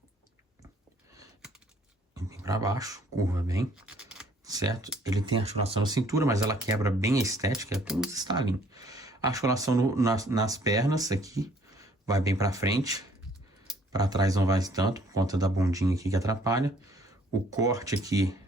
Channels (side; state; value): both; normal; correlation 0.60